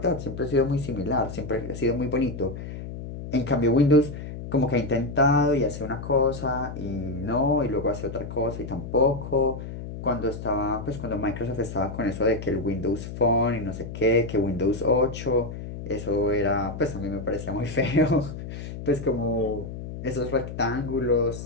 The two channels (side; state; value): left; noise; hum, 9 dB below the sound